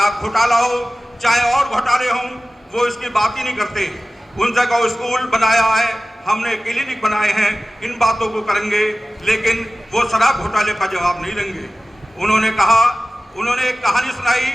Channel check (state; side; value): normal; both; correlation 0.96